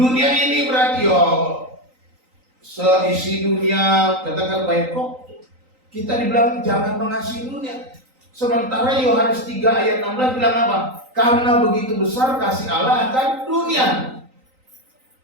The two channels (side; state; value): left; late; 3.9 ms